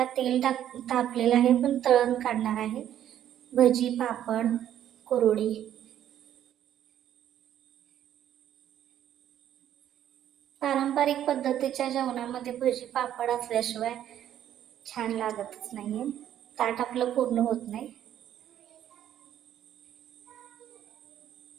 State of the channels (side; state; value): left; quieter; 11.0 dB